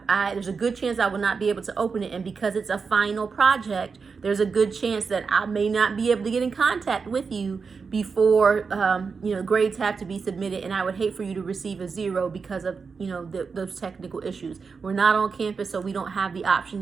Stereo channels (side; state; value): left; quieter; 5.2 dB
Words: there's a good chance I will not be able to open it. And because it's a final project, there's a good chance that I may not be able to get in contact with you before grades have to be submitted, and I would hate for you to receive a 0 because of those technical issues. We're not on campus, so we don't have the option